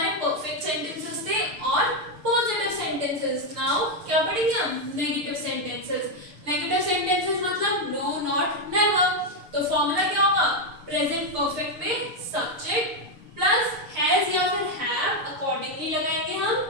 परफेक्ट सेंटेंसेस थे और पॉजिटिव सेंटेंसेस। नाउ क्या पढ़ेंगे हम? Negative sentences. नेगेटिव सेंटेंसेस मतलब नो, नॉट, नेवर। तो फॉर्मूला क्या होगा? प्रेजेंट परफेक्ट में सब्जेक्ट प्लस हैज या फिर हैव अकॉर्डिंगली लगाएंगे हम,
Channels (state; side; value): late; left; 6.6 ms